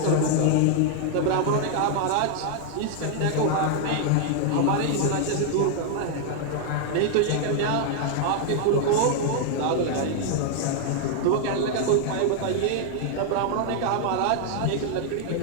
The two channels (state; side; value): different; both; correlation 0.00